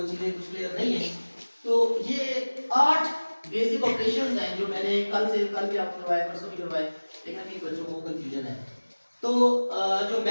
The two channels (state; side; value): inverted; both; correlation -1.00